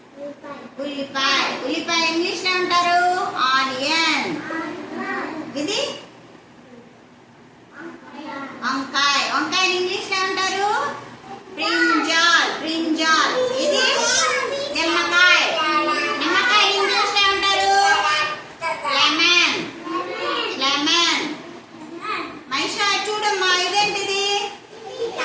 ఉల్లిపాయ. ఉల్లిపాయ ఇంగ్లీష్ లో అంటారు ఆనియన్. ఇది వంకాయ. వంకాయ ఇంగ్లీష్ లో అంటారు బ్రింజాల్. బ్రింజాల్. ఇది నిమ్మకాయ. నిమ్మకాయ ఇంగ్లీష్ లో అంటారు లెమన్. లెమన్. మైషా చూడమ్మా, ఇదేంటిది?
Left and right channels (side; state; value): both; identical; correlation 1.00